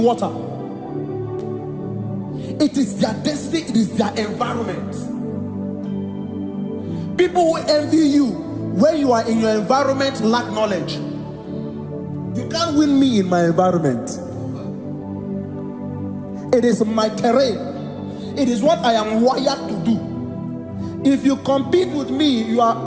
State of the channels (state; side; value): identical; both; correlation 1.00